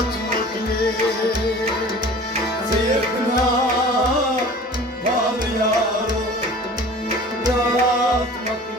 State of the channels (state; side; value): normal; both; correlation 0.42